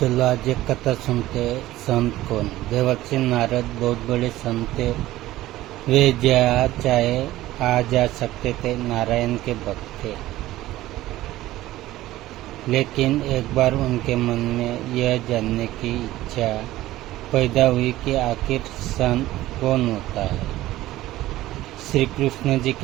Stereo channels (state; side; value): quieter; left; 15.9 dB